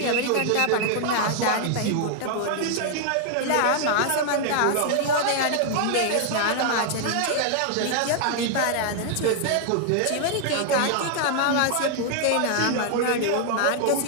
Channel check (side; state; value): both; different; correlation 0.00